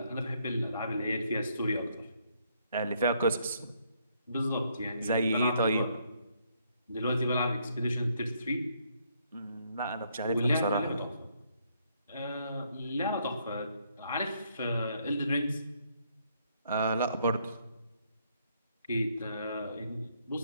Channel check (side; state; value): both; inverted; correlation -0.71